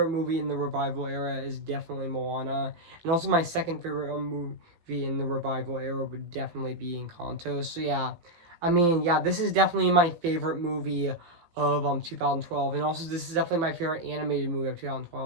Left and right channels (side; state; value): left; late; 17 ms